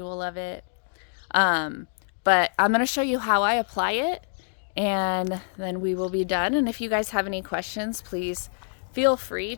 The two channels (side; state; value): right; silent; digital silence